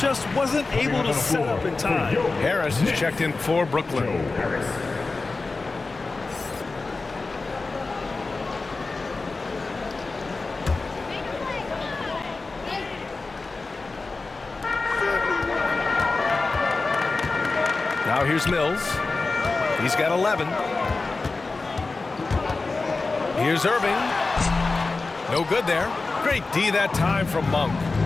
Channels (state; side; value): quieter; right; 3.7 dB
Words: wasn't able to set up in time. Harris is checked in for Brooklyn. Now here's Mills. He's got 11. Here's Irving. No good there. Great D that time from Monk.